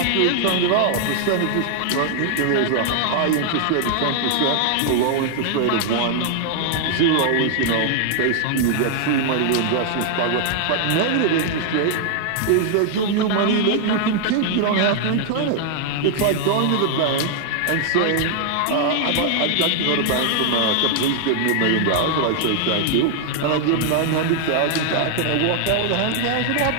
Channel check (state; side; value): different; both; correlation 0.00